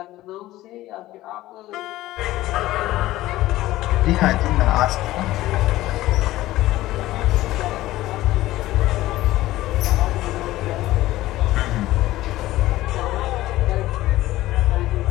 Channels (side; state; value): right; quieter; 16.2 dB